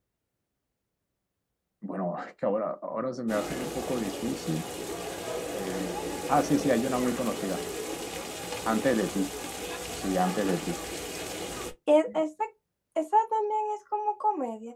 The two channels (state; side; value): identical; both; correlation 1.00